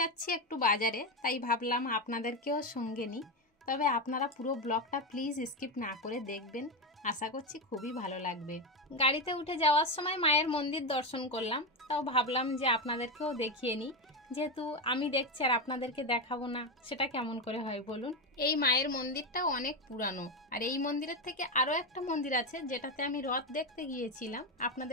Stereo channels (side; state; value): both; normal; correlation 0.12